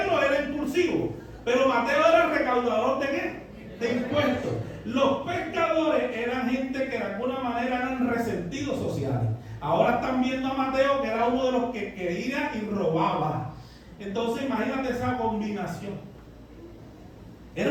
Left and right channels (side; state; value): both; identical; correlation 1.00